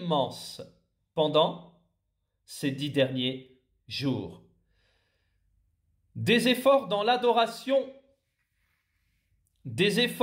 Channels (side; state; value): both; identical; correlation 1.00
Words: pendant ces 10 derniers jours. Des efforts dans l'adoration, des